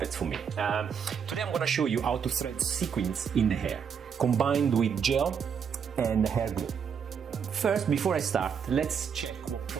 for me. Today I'm going to show you how to thread sequins in the hair, combined with gel and hair glue. First, before I start, let's check what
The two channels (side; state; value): left; quieter; 7.0 dB